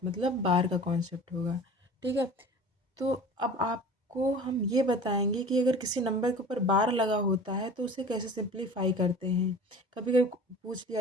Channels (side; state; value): both; normal; correlation 0.41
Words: मतलब बार का कॉन्सेप्ट होगा। ठीक है, तो अब आपको हम ये बताएंगे कि अगर किसी नंबर के ऊपर बार लगा होता है तो उसे कैसे सिंप्लीफाई करते हैं। कभी कभी पूछ